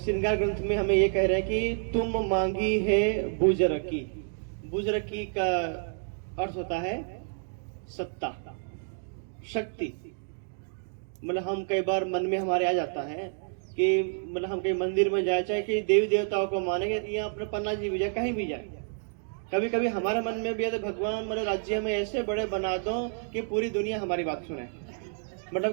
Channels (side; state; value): left; silent; digital silence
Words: ग्रंथ में हमें ये कह रहे हैं कि तुम मांगी है बुजरकी। बुजरकी का अर्थ होता है सत्ता, शक्ति। मतलब हम कई बार मन में हमारे आ जाता है कि मतलब हम कहीं मंदिर में जाए, चाहे कि देवी देवताओं को मानेंगे, यहाँ अपने पन्ना जी भी जाए, कहीं भी जाए, कभी कभी हमारे मन में भी है तो भगवान मतलब राज्य में ऐसे बड़े बना दो कि पूरी दुनिया हमारी बात सुने,